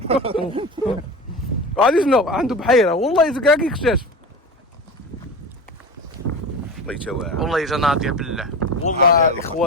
غادي شنو عنده بحيره والله كاع كيكتشف. الله يتواعد والله جا ناضيه بالله والله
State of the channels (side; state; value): both; normal; correlation 0.29